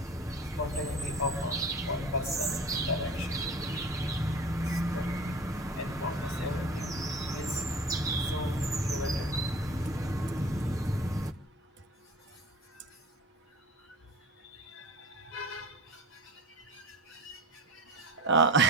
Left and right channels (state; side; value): normal; both; correlation 0.39